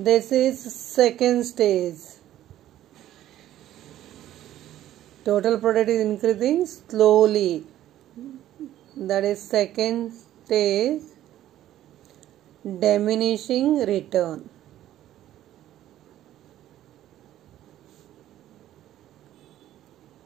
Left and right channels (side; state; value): left; quieter; 12.9 dB